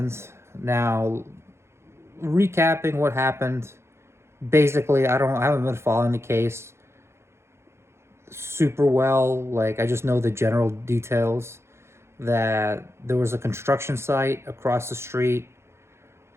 Now, recapping what happened. Basically, I haven't been following the case super well. Like I just know the general details that there was a construction site across the street.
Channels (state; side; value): late; left; 0.13 ms